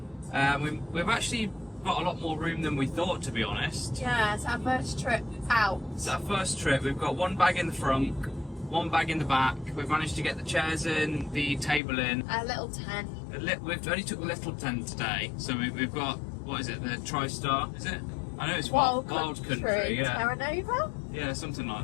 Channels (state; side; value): drops out; right; at 11.8 s